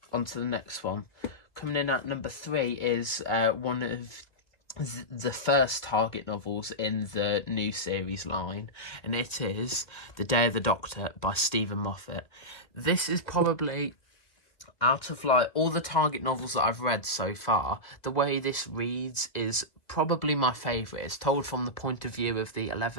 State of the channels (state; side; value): late; right; 1.8 ms